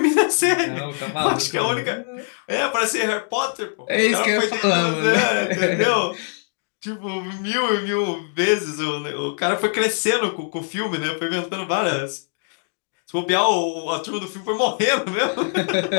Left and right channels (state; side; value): silent; right; 64 dB below the other